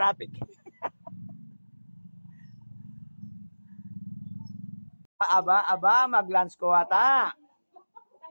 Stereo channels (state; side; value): inverted; both; correlation -1.00